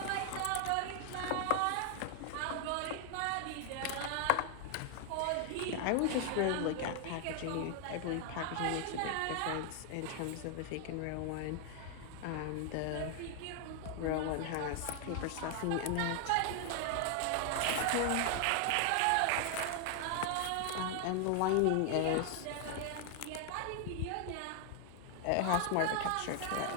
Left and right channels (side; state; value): both; different; correlation 0.00